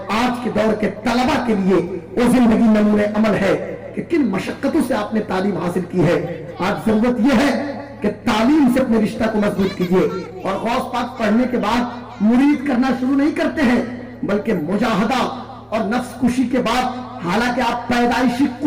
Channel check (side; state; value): both; identical; correlation 1.00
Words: आज के दौर के तलबा के लिए वो जिंदगी नमूने अमल है कि किन मशक्कतों से आपने तालीम हासिल की है। आज जरूरत यह है कि तालीम से अपने रिश्ता को मजबूत कीजिए। और गौस पाक पढ़ने के बाद मुरीद करना शुरू नहीं करते हैं, बल्कि मुजाहदा और नफ्स कुशी के बाद, हालांकि आप पैदाइशी